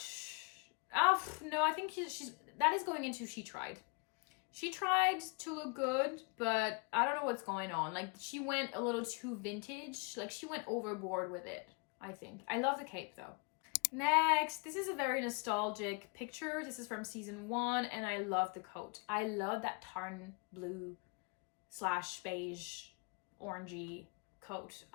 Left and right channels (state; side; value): quieter; right; 32.1 dB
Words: No, I think that is going into She Tried. She tried to look good, but I don't know what's going on. Like, she went a little too vintage. Like, she went overboard with it, I think. I love the cape, though. Next, this is a very nostalgic picture. This is from season 1, and I love the coat. I love that tarn blue / beige orangey coat.